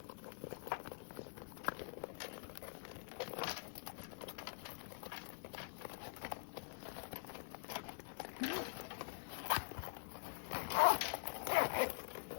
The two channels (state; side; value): silent; right; digital silence